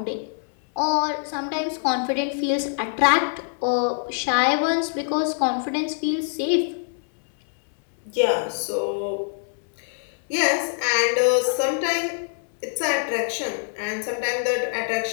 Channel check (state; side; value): silent; right; 62 dB below the other